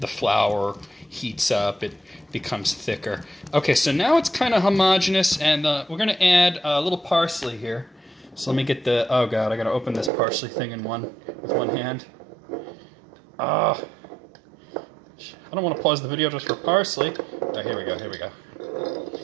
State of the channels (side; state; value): left; drops out; at 10.1 s